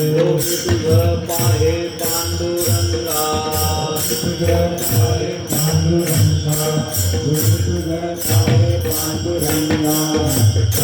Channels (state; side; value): identical; both; correlation 1.00